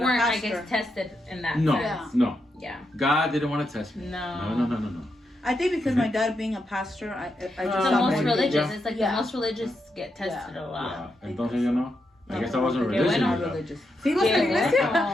weren't, pastor. I guess, tested in that No, sense. no. Yeah. God didn't want to test me. No. No. I think because my dad being a pastor, I just The got most more religious. Yeah. It's like Yeah. the most religious get tested a lot. Yeah. Entonces yo no. I guess I wasn't Qué religious. bueno. enough. religious. ¿Sí ibas a la Qué iglesia?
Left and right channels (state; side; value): normal; both; correlation 0.84